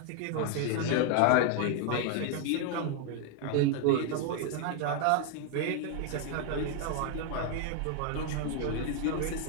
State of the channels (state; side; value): different; both; correlation 0.00